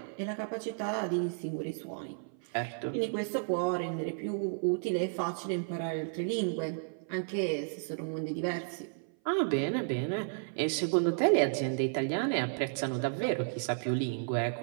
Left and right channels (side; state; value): left; silent; 56 dB below the other